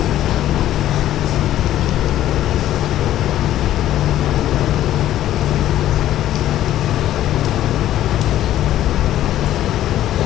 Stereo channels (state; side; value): quieter; right; 12.8 dB